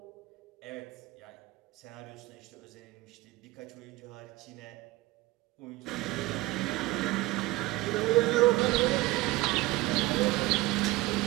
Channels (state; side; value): quieter; left; 19.1 dB